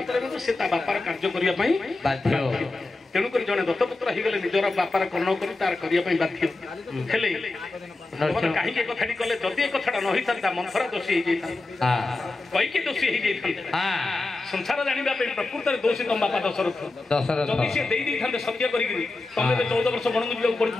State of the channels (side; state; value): right; quieter; 3.2 dB